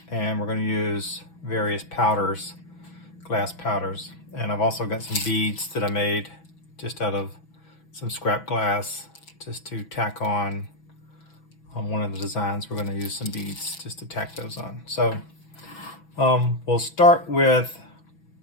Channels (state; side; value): late; right; 6.1 ms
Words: and we're going to use various powders, glass powders. And I've also got some beads that I made just out of some scrap glass just to tack on one of the designs. We're going to use some beads just to tack those on. So we'll start with,